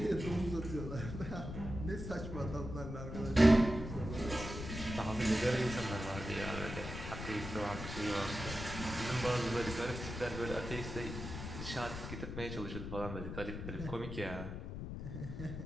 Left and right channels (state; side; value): noise; left; rumble, 7 dB below the sound